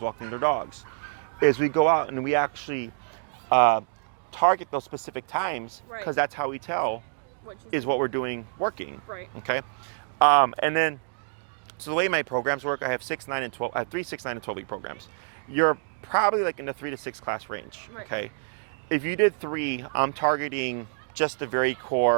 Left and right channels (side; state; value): left; silent; digital silence